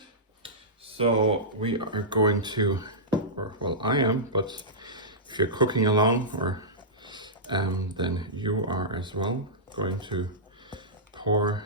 So we are going to, or well, I am, but if you're cooking along, or then you are as well, going to pour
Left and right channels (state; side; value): normal; both; correlation -0.14